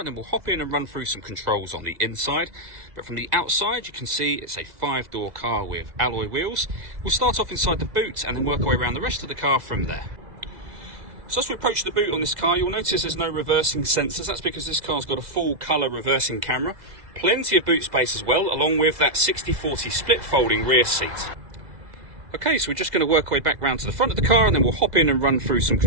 then we'll hop in and run through some controls on the inside. But from the outside you can see it's a 5-door car with alloy wheels. We'll start off inside the boot and then work our way around the rest of the car from there. So as we approach the boot on this car, you'll notice there's no reversing sensors. That's because this car's got a full colour reversing camera. Plenty of boot space as well, along with that 60/40 split folding rear seat. Okay, so we're just going to work our way back round to the front of the car, and then we'll hop in and run through some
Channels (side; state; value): left; late; 2.0 ms